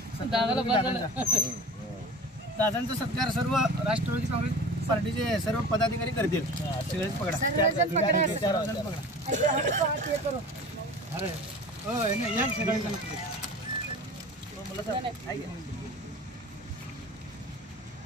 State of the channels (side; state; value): both; normal; correlation 0.38